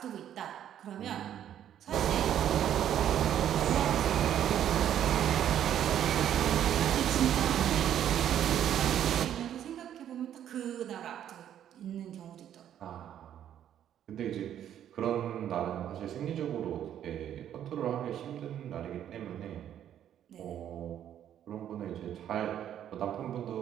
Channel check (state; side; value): quieter; left; 10.4 dB